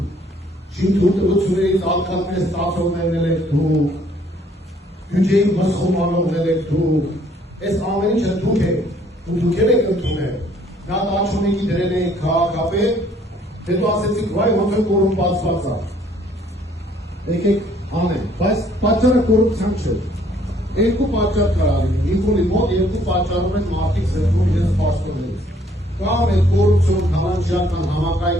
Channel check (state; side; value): normal; both; correlation 0.62